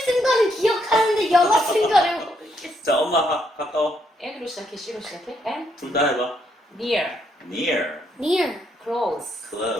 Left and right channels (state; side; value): normal; both; correlation 0.75